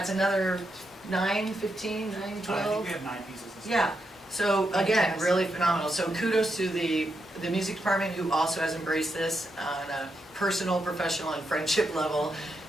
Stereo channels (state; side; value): normal; both; correlation 0.83